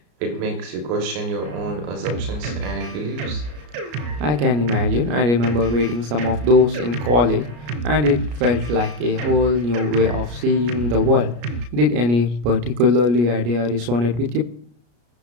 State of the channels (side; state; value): left; late; 33 ms